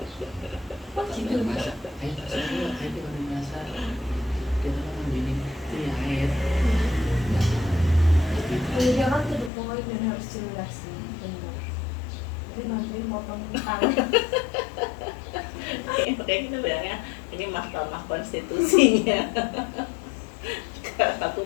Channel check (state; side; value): drops out; right; at 9.5 s